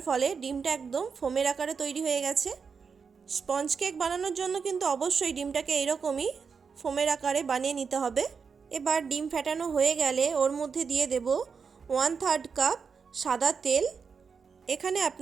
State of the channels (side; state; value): left; quieter; 5.7 dB